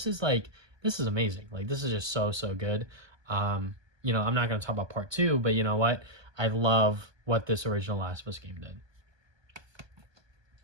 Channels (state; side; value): late; left; 1.2 ms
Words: is amazing. Like, this is just so good. You know, I'm not going to talk about part 2, but you know what? I love what this original Last of Us game did.